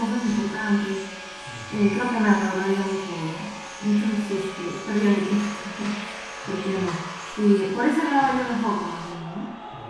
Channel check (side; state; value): both; identical; correlation 1.00